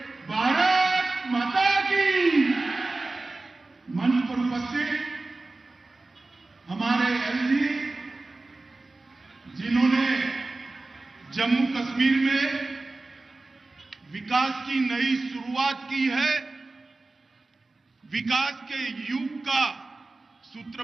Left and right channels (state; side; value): quieter; left; 3.2 dB